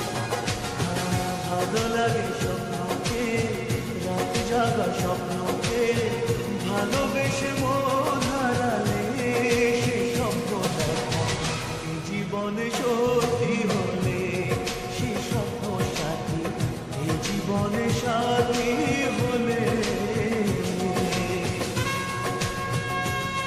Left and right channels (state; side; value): identical; both; correlation 1.00